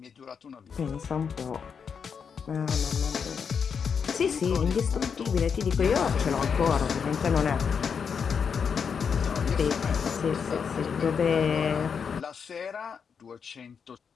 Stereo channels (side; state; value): right; quieter; 6.5 dB